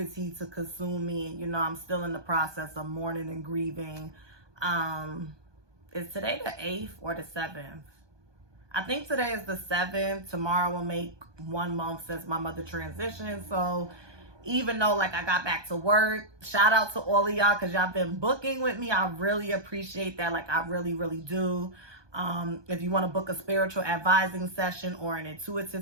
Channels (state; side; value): late; left; 1.2 ms